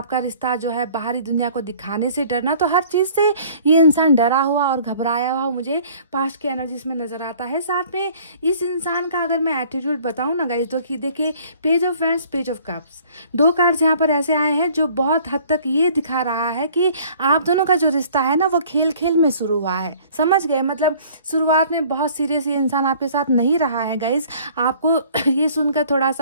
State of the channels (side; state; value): both; inverted; correlation -0.53